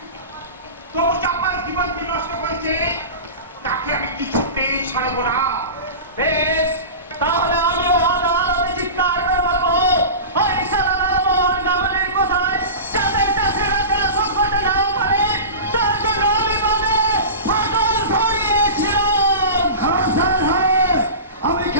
তবু চাপার জীবন যে নষ্ট করেছে তাকে আমি কিছুতেই ছাড়বো না। বেশ, তাহলে আমিও আদালতে চিৎকার করে বলবো, ওই শালা লালমোহন গাঙ্গুলির কোথায় যাতে চাষিরা যেন সংকটে না পড়ে, তার জন্য আমি বাঁধে ফাটল ধরিয়েছিলাম। হ্যাঁ স্যার, হ্যাঁ, আমি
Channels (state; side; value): inverted; both; correlation -0.31